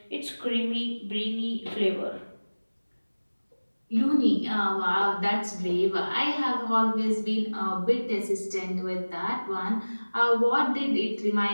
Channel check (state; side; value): inverted; both; correlation -1.00